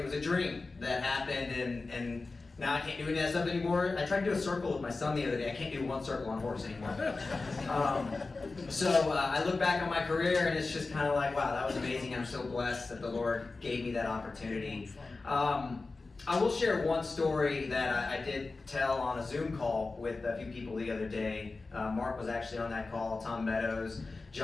was a dream that happened, and now I can't do any of that stuff anymore. I tried to do a circle with my son the other day. I can't do one circle on horse anymore. So I look back on my career and it's just kind of like, wow, that was amazing. I'm so blessed that the Lord gave me that opportunity. I will share one story that I did tell on a Zoom call with a few people the other day. Mark was actually on that call, Tom Meadows,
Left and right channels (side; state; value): right; quieter; 3.7 dB